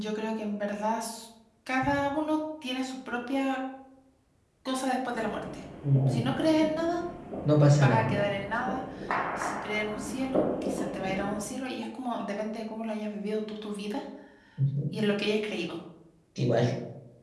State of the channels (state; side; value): identical; both; correlation 1.00